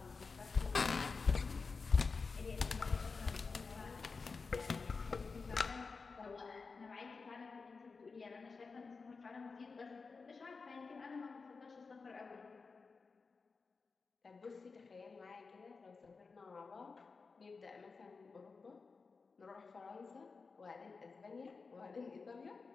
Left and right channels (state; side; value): quieter; right; 4.6 dB